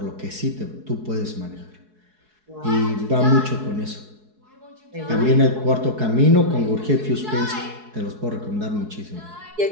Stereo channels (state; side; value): late; left; 4.7 ms